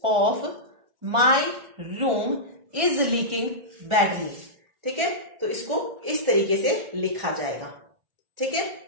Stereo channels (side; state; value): left; late; 1.4 ms